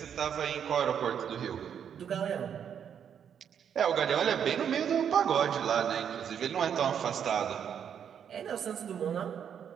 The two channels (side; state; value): left; quieter; 8.3 dB